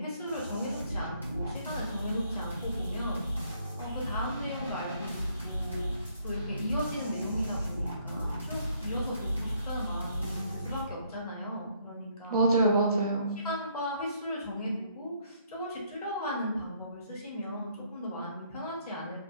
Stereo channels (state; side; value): inverted; both; correlation -0.67